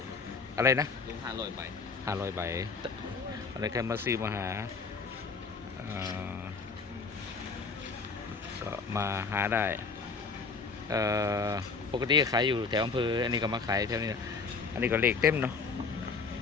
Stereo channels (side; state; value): right; quieter; 4.8 dB